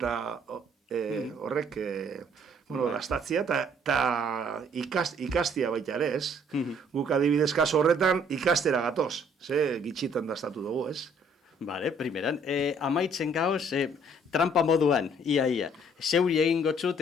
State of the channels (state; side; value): normal; both; correlation 0.61